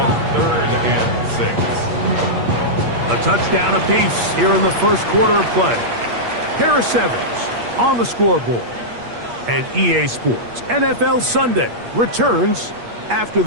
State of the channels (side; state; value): left; late; 8.4 ms